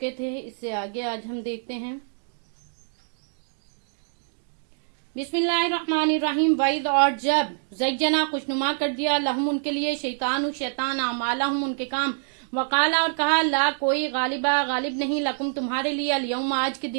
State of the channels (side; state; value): left; silent; digital silence